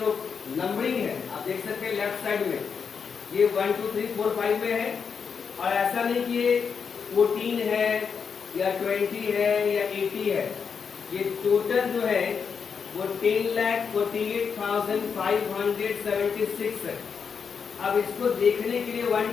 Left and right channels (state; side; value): quieter; right; 6.2 dB